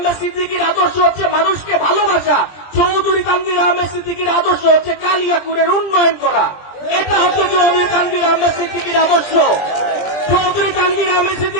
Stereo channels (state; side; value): late; right; 20 ms